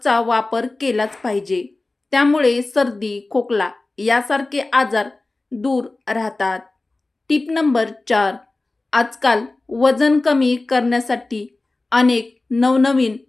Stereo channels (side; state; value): right; quieter; 3.1 dB